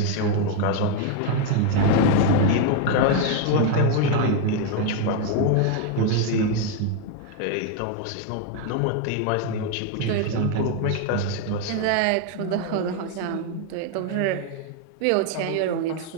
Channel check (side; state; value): both; different; correlation 0.01